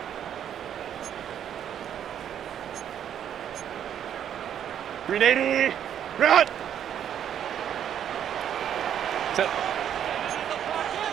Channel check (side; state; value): left; quieter; 9.6 dB